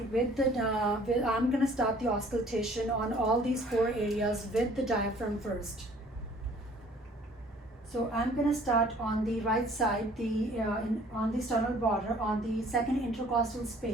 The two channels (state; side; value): normal; both; correlation 0.54